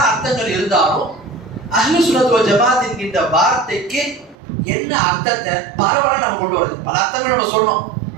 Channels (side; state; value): left; drops out; at 4.4 s